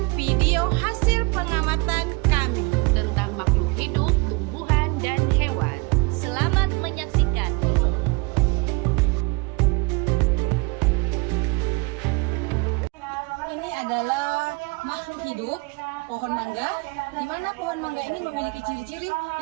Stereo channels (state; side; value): quieter; left; 28.4 dB